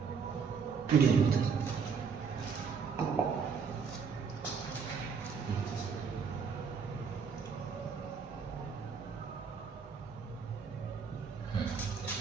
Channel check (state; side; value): quieter; left; 5.9 dB